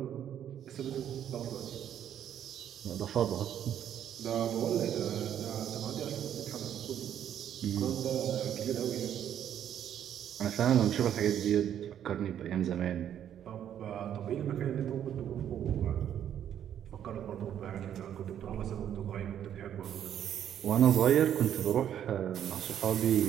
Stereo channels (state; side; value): quieter; left; 10.0 dB